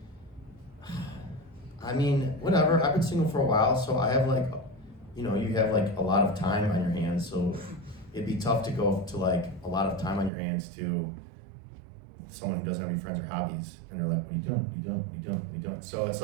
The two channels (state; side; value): drops out; left; at 10.3 s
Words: I mean, whatever. I've been single for a while, so I have like, you know, you have like a lot of time on your hands, so it'd be tough to go to like a lot of time on your hands to someone who doesn't have any friends or hobbies, and they're like, "What are you doing? What are you doing? What are you doing? What are you doing?" So it's